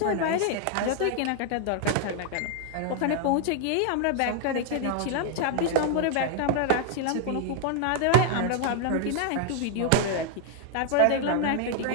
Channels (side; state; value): both; different; correlation 0.00